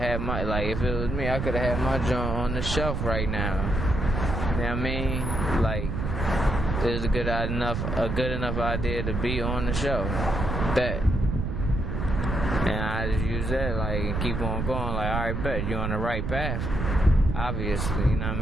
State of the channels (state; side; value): noise; right; rumble, 2 dB below the sound